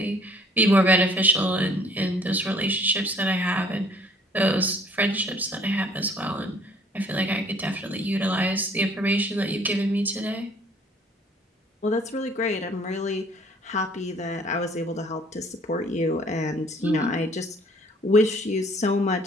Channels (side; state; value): both; normal; correlation 0.57